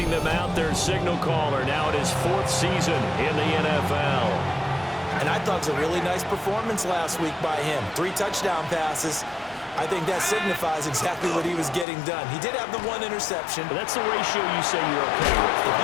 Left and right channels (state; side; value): drops out; right; at 11.9 s